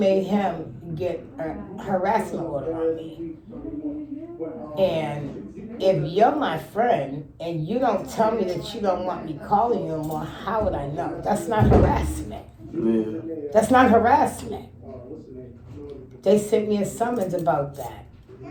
him get a harassment order on me? And if you're my friend and you don't tell me that you don't want me calling you anymore, how would I know? That's not harassment. That's not harassment. They sent me a summons about that.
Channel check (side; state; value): both; identical; correlation 1.00